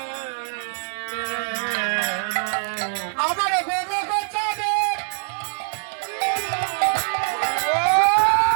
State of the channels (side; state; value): left; silent; digital silence